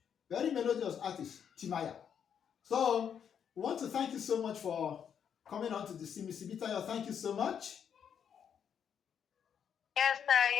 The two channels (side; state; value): right; quieter; 8.0 dB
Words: artist, Timaya. So we want to thank you so much for coming on to the Simisibitayo. Thank you so much. Yes, sir.